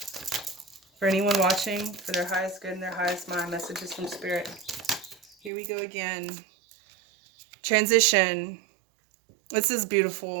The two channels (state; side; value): drops out; left; at 5.5 s